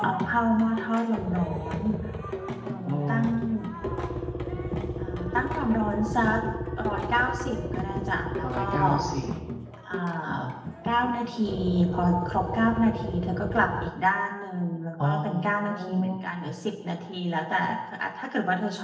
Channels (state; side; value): identical; both; correlation 1.00